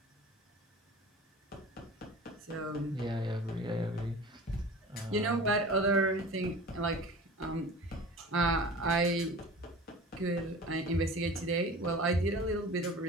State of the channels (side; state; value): both; normal; correlation 0.39